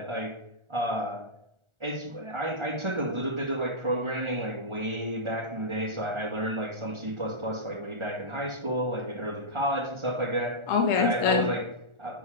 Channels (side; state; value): left; late; 1.4 ms